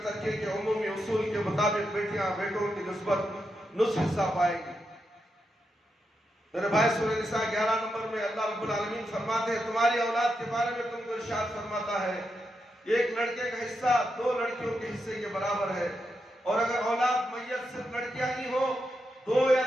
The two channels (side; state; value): both; normal; correlation 0.85